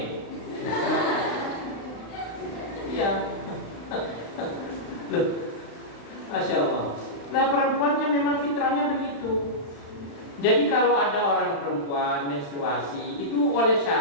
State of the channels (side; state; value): right; late; 35 ms